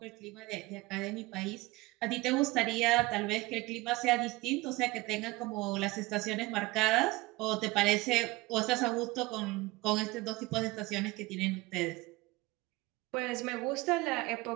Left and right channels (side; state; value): left; quieter; 21.5 dB